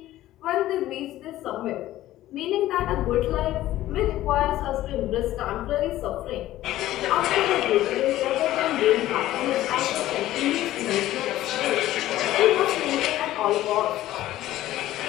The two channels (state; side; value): quieter; right; 14.7 dB